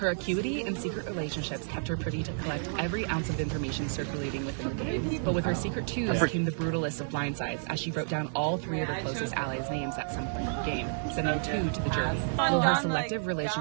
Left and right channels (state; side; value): silent; left; digital silence